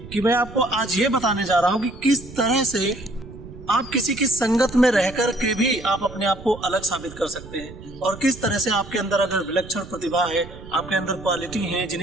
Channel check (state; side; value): noise; right; rumble, 15 dB below the sound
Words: कि मैं आपको आज ये बताने जा रहा हूँ कि किस तरह से आप किसी की संगत में रहकर के भी आप अपने आप को अलग साबित कर सकते हैं और किस तरह से आपके अंदर अगर विलक्षण प्रतिभा है, आपके अंदर क्वालिटी है